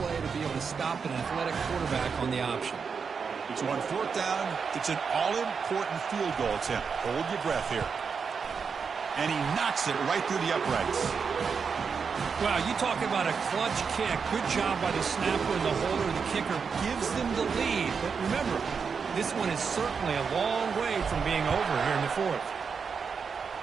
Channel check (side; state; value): left; quieter; 5.8 dB